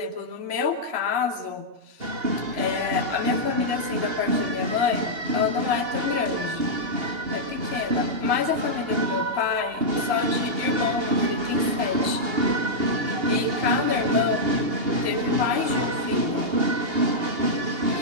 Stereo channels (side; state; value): left; late; 2.8 ms